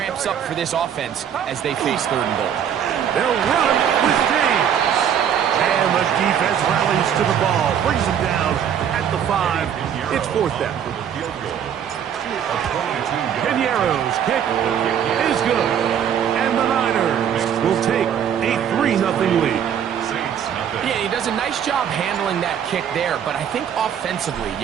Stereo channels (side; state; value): left; quieter; 8.8 dB